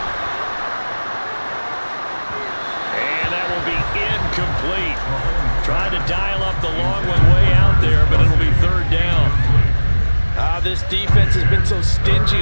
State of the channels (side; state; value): both; inverted; correlation -1.00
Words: And that will be incomplete. Tried to dial up the long one way out there, but it'll be 3rd down. This defense has been so stingy